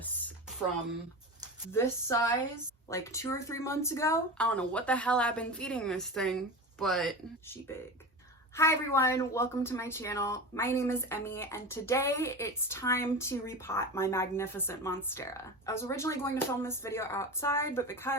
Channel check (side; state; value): both; normal; correlation 0.27